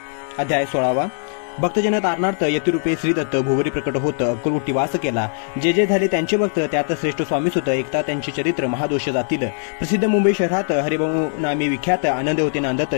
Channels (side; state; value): right; silent; 65 dB below the other